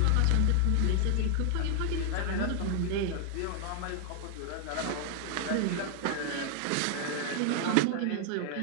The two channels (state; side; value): different; both; correlation 0.00